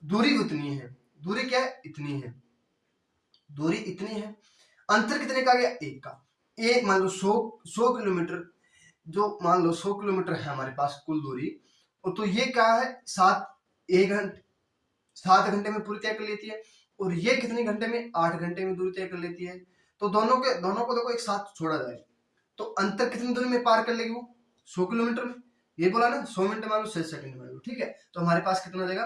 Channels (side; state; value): both; identical; correlation 1.00